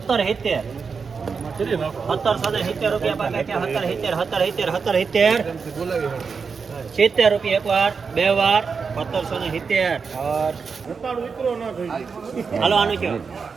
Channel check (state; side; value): quieter; left; 5.4 dB